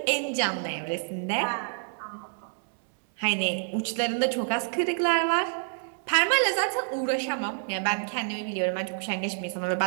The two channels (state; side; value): silent; left; 59 dB below the other